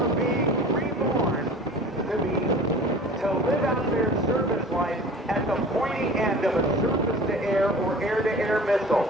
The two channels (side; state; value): both; normal; correlation 0.42